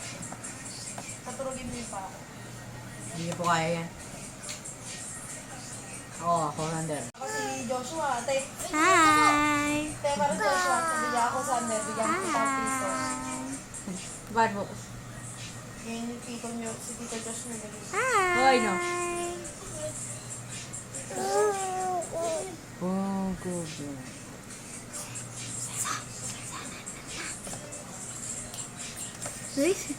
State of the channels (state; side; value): identical; both; correlation 1.00